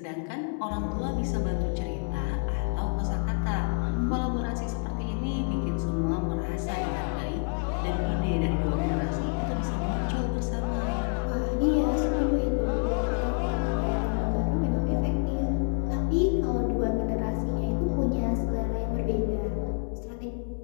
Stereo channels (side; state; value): right; silent; 59 dB below the other